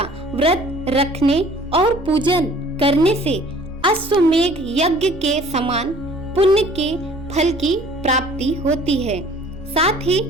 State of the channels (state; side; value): normal; both; correlation 0.52